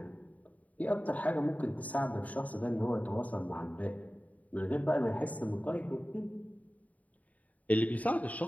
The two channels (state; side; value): late; right; 0.071 ms